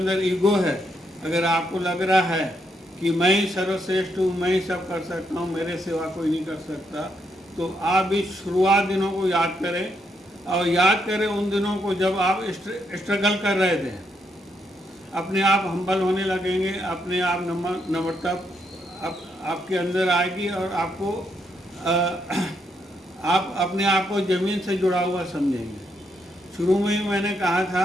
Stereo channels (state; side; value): normal; both; correlation 0.77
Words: ईगो है, अगर आपको लग रहा है कि मैं ही सर्वश्रेष्ठ हूँ, मैं ही सब कर सकता हूँ, मेरे सिवा कोई नहीं कर सकता, तो आप इस शुरुआत दिनों को याद करें और याद करें उन दिनों को जब आप स्ट्रगल कर रहे थे। अपने आप हम्बल होने लगेंगे, अपने आप नम्रता आपके अंदर आएगी और आपको आप अपने आप को ज़मीन से जुड़ा हुआ समझेंगे। शुरू में ही मैंने कहा